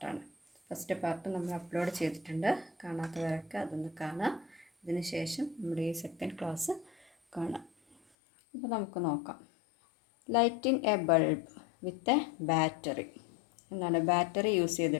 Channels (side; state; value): right; drops out; at 8.0 s